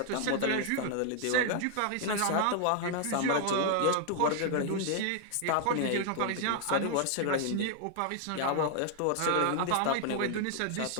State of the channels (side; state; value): both; different; correlation 0.00